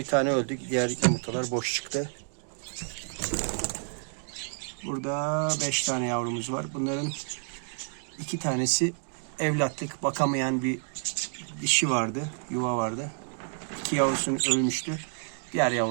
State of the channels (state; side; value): silent; left; 58 dB below the other